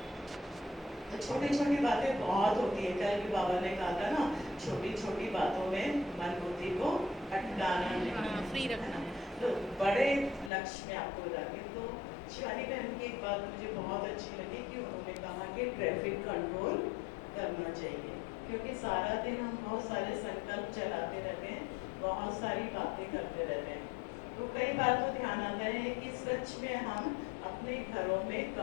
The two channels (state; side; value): drops out; right; at 10.5 s